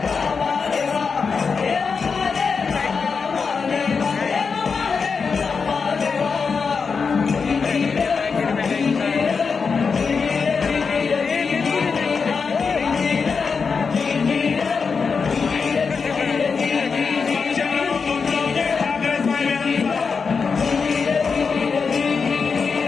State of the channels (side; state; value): right; quieter; 5.3 dB